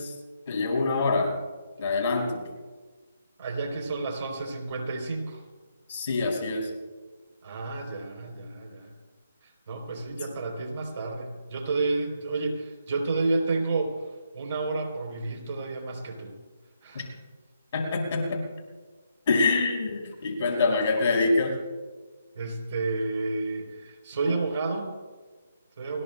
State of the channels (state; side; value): inverted; both; correlation -0.77